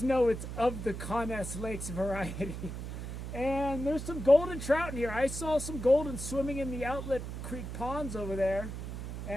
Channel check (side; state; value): right; noise; hum, 7 dB below the sound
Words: it's of the Conness Lakes variety. And there's some golden trout in here. I saw some golden swimming in the outlet creek ponds over there,